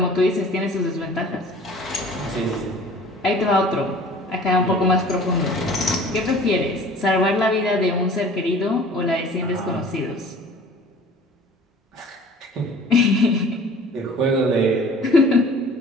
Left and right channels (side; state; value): both; normal; correlation 0.47